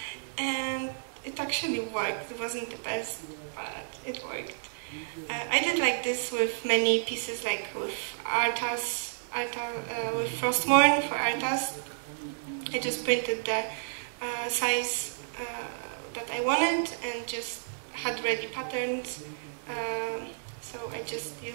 and it actually worked. It wasn't the best, but it worked. I did like this with many pieces, like with Arthas, with Frostmourne for Arthas. I just printed the size that I wanted and just had ready patterns, so I just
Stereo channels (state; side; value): silent; left; digital silence